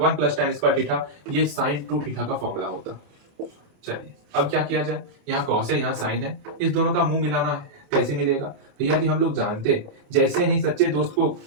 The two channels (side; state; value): left; late; 28 ms